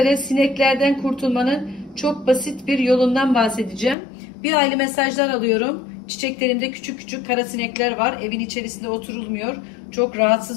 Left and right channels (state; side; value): drops out; right; at 4.0 s